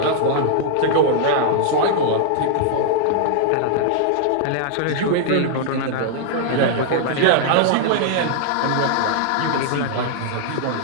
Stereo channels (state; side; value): different; both; correlation -0.01